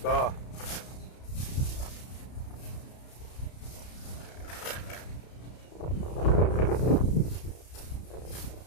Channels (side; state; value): right; late; 32 ms